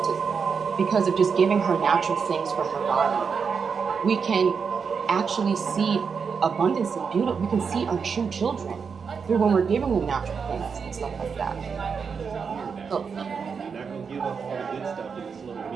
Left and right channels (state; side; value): quieter; left; 5.9 dB